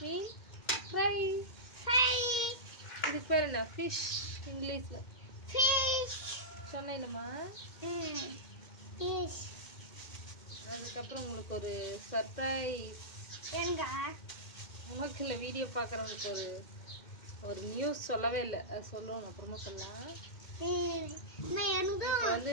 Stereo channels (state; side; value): late; right; 2.1 ms